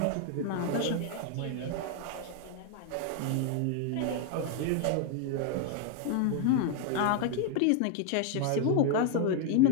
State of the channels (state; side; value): different; both; correlation 0.01